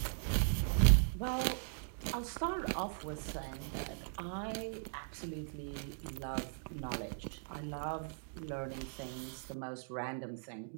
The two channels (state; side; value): silent; left; digital silence